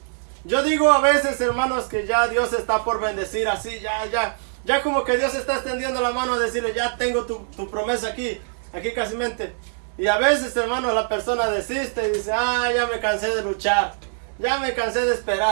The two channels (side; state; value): left; silent; digital silence